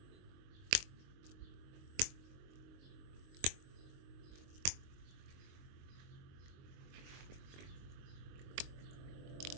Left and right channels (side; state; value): left; late; 22 ms